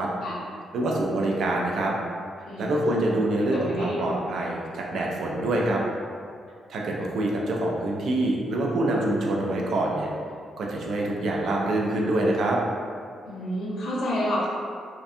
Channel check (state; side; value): normal; both; correlation 0.77